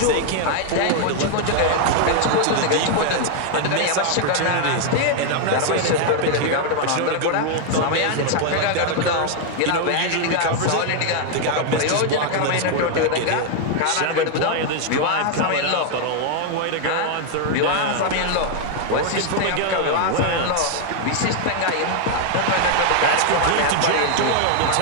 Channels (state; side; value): different; both; correlation 0.00